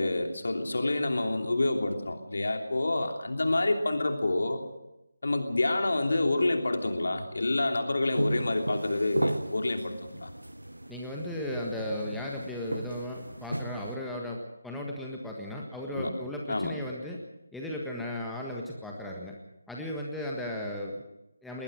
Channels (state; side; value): inverted; both; correlation -0.91